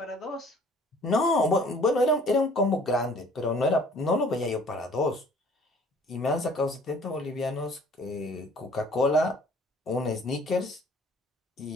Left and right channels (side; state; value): both; normal; correlation 0.53